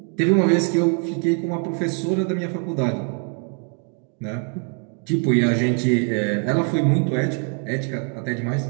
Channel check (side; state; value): left; quieter; 39.4 dB